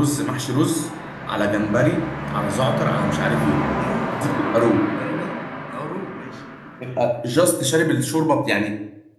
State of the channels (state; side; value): identical; both; correlation 1.00